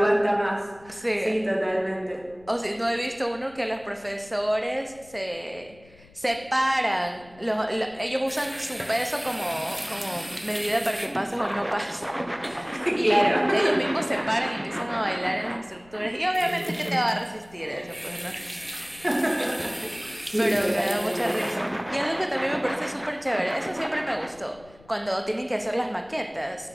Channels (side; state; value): left; noise; rumble, 25 dB below the sound